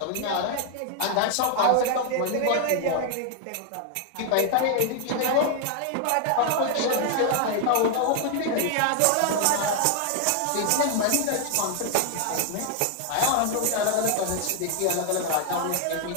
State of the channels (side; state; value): both; different; correlation 0.00